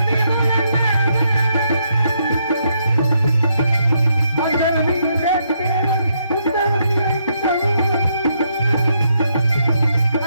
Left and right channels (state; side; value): inverted; both; correlation -0.76